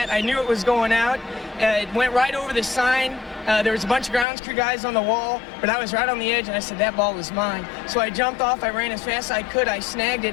I knew it was going out. It went right over the sign. There was a bunch of grounds crew guys on the wall, but I was right on the edge, and I said, that ball was mine. So I jumped off, I ran as fast as I could, I snagged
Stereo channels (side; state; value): right; drops out; at 4.2 s